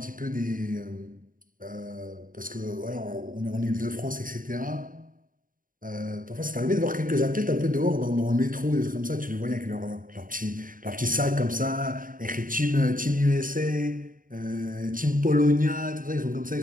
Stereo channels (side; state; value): left; late; 0.40 ms